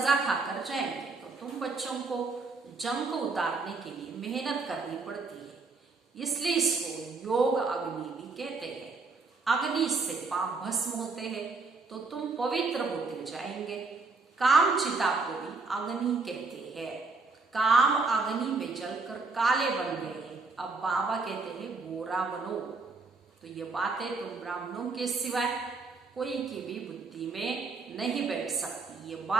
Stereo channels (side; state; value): left; quieter; 4.1 dB